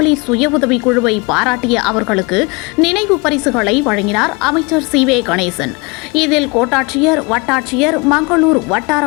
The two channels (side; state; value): right; quieter; 28.0 dB